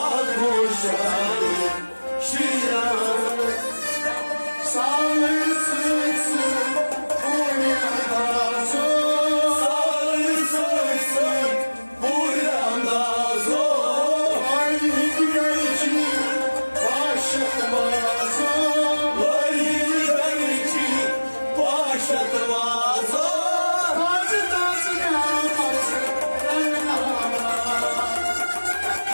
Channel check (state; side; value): inverted; both; correlation -1.00